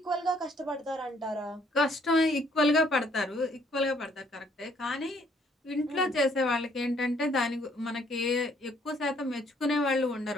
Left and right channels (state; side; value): normal; both; correlation 0.65